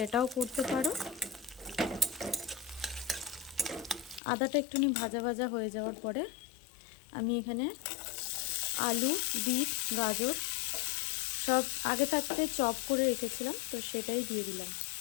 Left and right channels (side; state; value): right; drops out; at 4.2 s